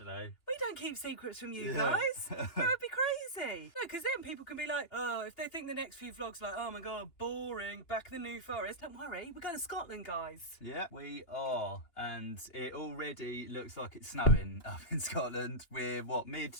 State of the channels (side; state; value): right; late; 2.9 ms